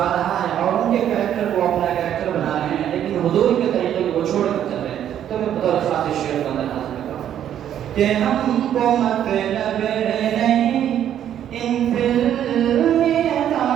रहा है और उनके कैरेक्टर को अपना कैरेक्टर बना रहे हैं, लेकिन हुजूर के तरीके को छोड़ कर चल रहे हैं। तो मैं बतौर खास शेर का अंदर हाजिर करता हूँ कि हमको मतलब नहीं इन फिल्मी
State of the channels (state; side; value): quieter; left; 10.3 dB